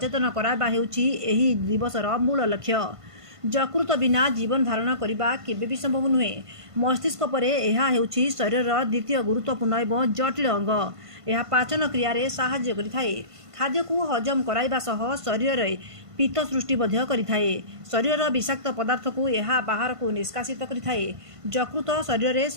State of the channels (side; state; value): left; late; 1.5 ms